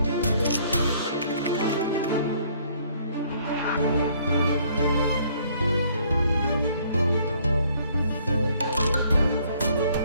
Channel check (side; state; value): both; inverted; correlation -0.62